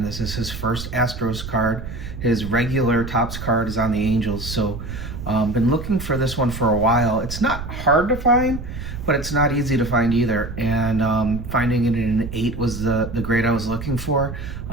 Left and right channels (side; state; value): right; noise; rumble, 8 dB below the sound